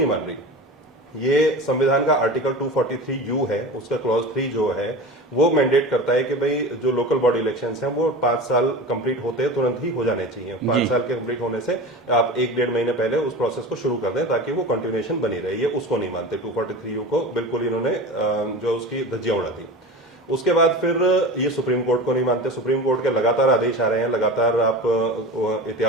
मान रही। ये संविधान का आर्टिकल 243U है, उसका क्लॉज 3 जो है वो मैंडेट करता है कि भाई जो लोकल बॉडी इलेक्शंस हैं वो 5 साल कंप्लीट होते हैं तुरंत ही हो जाने चाहिए। 5 साल के कंप्लीट होने से आप 1-1.5 महीने पहले उस प्रोसेस को शुरू कर दें ताकि वो कंटिन्यूएशन बनी रहे। ये उसको नहीं मानते, 243U को बिल्कुल इन्होंने जो उसकी धज्जियां उड़ा दी। उसके बाद फिर ये सुप्रीम कोर्ट को नहीं मानते। सुप्रीम कोर्ट के लगातार आदेश आ रहे हैं, लगातार आप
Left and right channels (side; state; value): both; normal; correlation 0.32